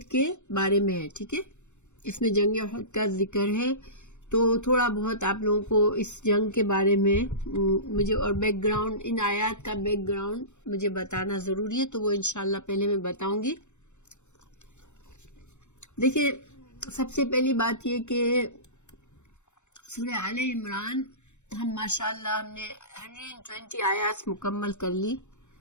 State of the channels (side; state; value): right; late; 0.84 ms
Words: کے بارے میں ہے. ٹھیک ہے، اس میں جنگ احد کا ذکر ہے، تو تھوڑا بہت آپ لوگوں کو اس جنگ کے بارے میں مجھے اور بیک گراؤنڈ، ان آیات کا بیک گراؤنڈ مجھے بتانا ضروری ہے، تو وہ انشاءاللہ پہلے میں بتاؤں گی. دیکھیں، سب سے پہلی بات یہ کہ سورہ آل عمران ہم ماشاءاللہ ہم نے 120 آیات مکمل کر لی،